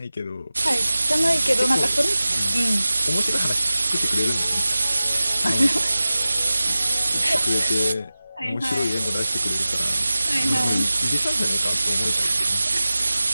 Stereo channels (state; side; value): inverted; both; correlation -0.96